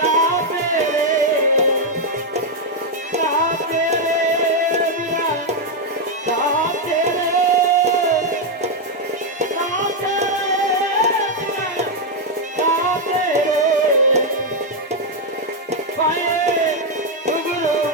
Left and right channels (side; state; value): both; normal; correlation 0.01